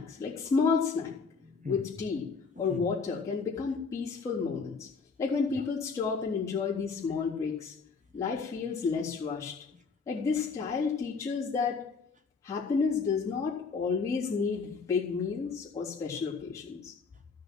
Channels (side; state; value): right; quieter; 5.0 dB